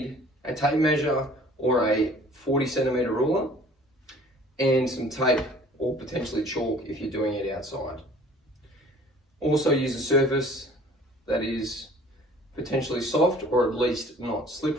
a tape measure or a 40 centimeter ruler and some tape or potentially chalk if you're doing it outside. Also use a surface that is potentially soft or at least not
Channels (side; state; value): both; normal; correlation 0.50